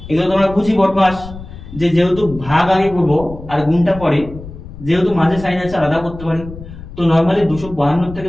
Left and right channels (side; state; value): left; noise; rumble, 14 dB below the sound